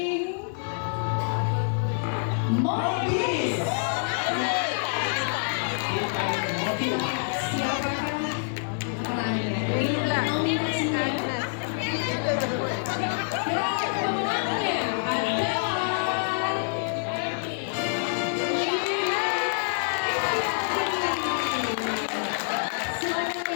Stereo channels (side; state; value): right; silent; digital silence